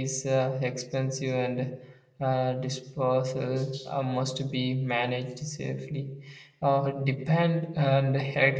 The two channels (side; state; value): both; identical; correlation 1.00